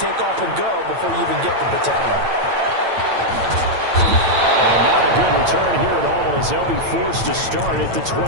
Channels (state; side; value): late; left; 8.9 ms